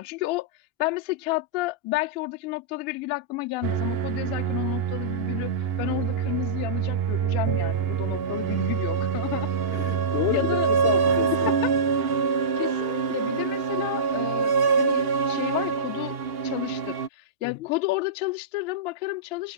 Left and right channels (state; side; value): late; left; 2.9 ms